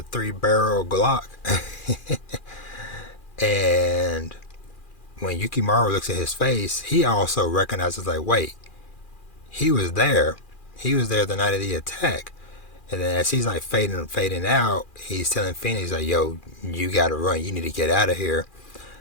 3-barrel Glock. And when Yukimaru looks at his face, he also recognizes like, wait, he was there. He was there the night of the attack. And then as he's like fading out, he's telling Fena, he's like, yo, you gotta run. You need to get out of here.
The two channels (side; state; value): right; late; 2.4 ms